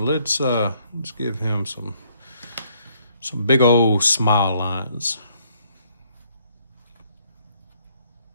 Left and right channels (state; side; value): inverted; both; correlation -0.67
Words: give him some big old smile lines.